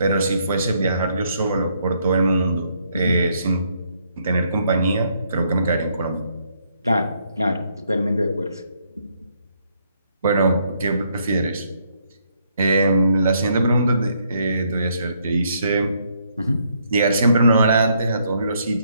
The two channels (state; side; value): inverted; both; correlation -0.72